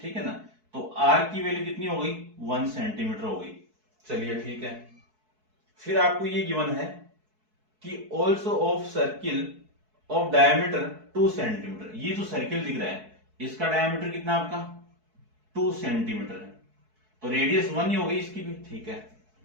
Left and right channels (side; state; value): left; late; 4.6 ms